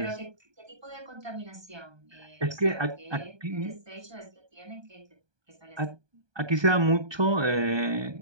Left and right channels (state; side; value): late; left; 1.2 ms